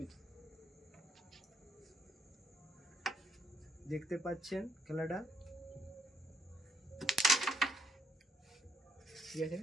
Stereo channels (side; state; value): both; normal; correlation 0.74